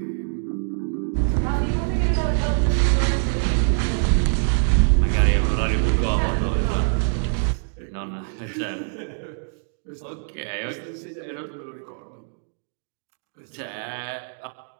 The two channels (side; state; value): left; silent; digital silence